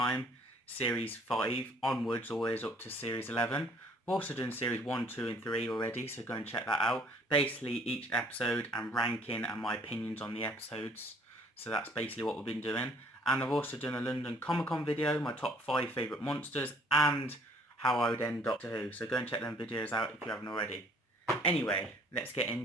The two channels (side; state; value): both; normal; correlation 0.58